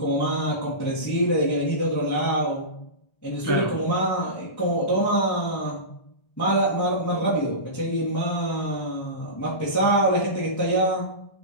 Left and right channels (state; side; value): late; right; 1.3 ms